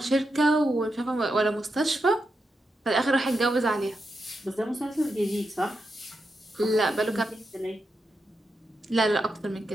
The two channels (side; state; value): both; normal; correlation 0.86